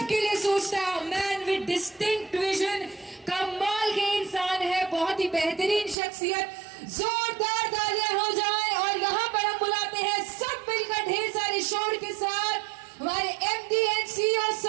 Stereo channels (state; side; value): drops out; left; at 6.0 s